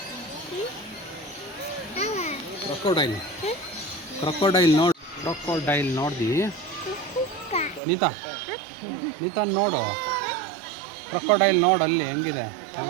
ಕ್ರೊಕೊಡೈಲ್ ನೋಡು ಕ್ರೊಕೊಡೈಲ್ ನೋಡ್ದಿ ನೀತಾ ನೋಡು, ಕ್ರೊಕೊಡೈಲ್ ನೋಡು ಅಲ್ಲಿ ಹೆಂಗಿದೆ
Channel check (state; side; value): drops out; left; at 7.8 s